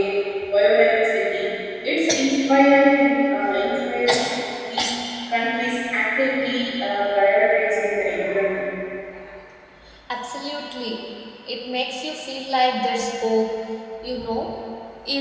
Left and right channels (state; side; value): identical; both; correlation 1.00